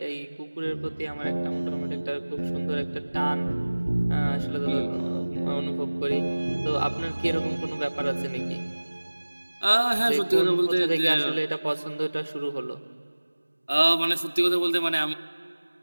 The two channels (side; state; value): both; inverted; correlation -1.00